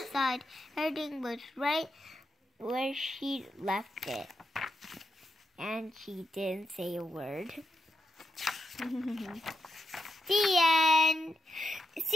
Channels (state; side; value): normal; both; correlation 0.86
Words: side, everything was right where she left it. And she didn't say a word. The end.